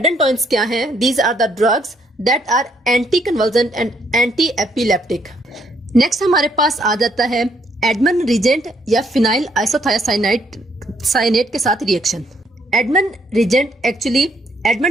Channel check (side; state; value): both; normal; correlation 0.70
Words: क्या हैं? These are the drugs that are anti convulsant and anti epileptic. Next हमारे पास आ जाता है एडमन रिजेंट या फिनाइल आइसोथायोसाइनेट के साथ reaction. Edman reagent actually